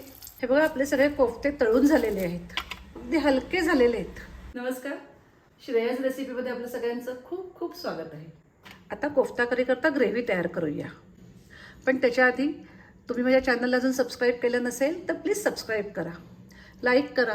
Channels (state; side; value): identical; both; correlation 1.00